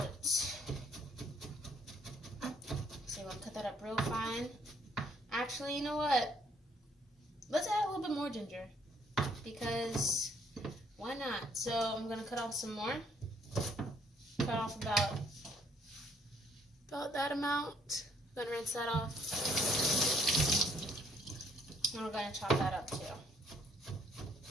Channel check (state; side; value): normal; both; correlation 0.65